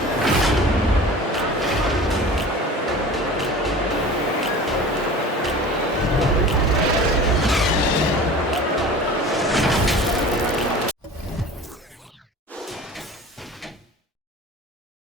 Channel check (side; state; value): both; normal; correlation 0.39